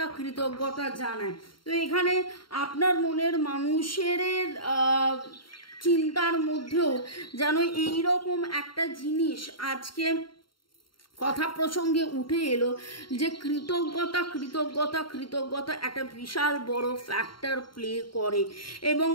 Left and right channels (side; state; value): right; late; 0.73 ms